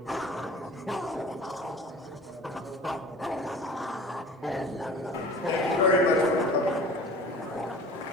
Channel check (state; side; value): normal; both; correlation 0.41